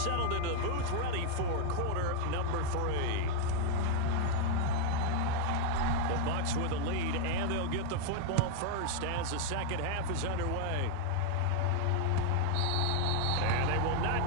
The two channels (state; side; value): different; both; correlation 0.00